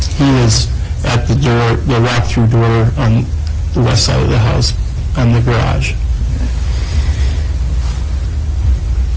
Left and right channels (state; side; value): identical; both; correlation 1.00